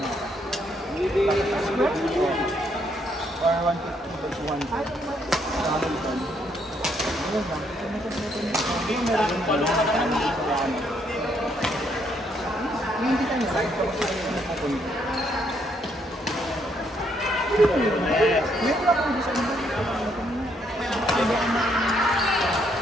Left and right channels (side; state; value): both; normal; correlation 0.72